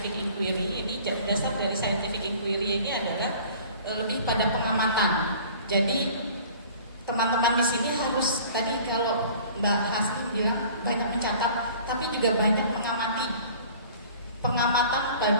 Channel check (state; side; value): inverted; both; correlation -0.47